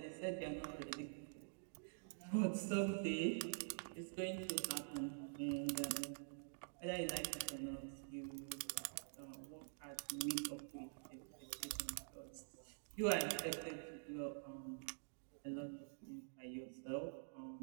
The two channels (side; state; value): left; silent; digital silence